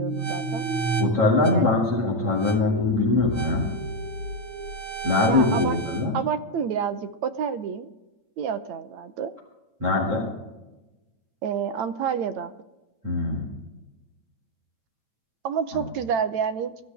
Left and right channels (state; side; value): late; left; 9.0 ms